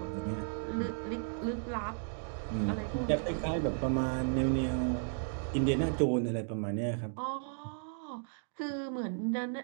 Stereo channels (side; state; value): left; silent; digital silence